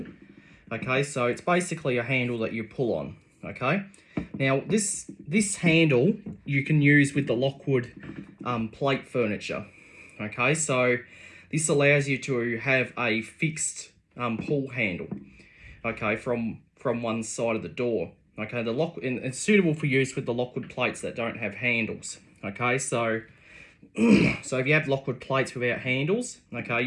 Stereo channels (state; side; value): identical; both; correlation 1.00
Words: Okay, so it's basically a handle that you pull on. Okay, now this handle you can use with the Lockwood plate furniture. Okay, so this allows you to have a fixed pull handle. Okay, from one side of the door. Okay, and it's suitable for use with the Lockwood plates that don't have handles. Okay, so so if you have Lockwood plates without handles, okay,